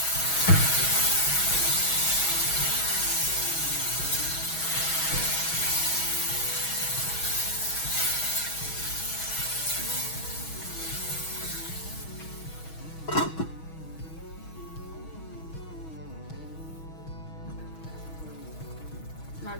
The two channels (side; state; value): right; late; 6.3 ms